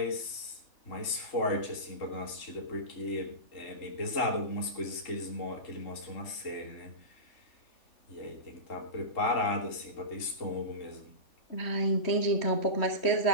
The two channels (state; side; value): late; right; 3.7 ms